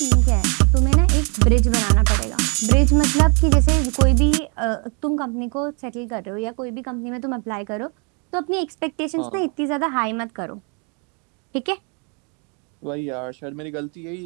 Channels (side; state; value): left; quieter; 36.0 dB